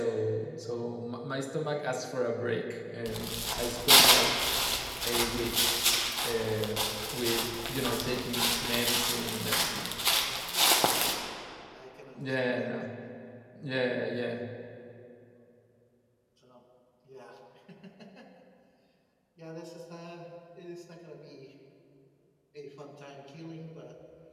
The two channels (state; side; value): identical; both; correlation 1.00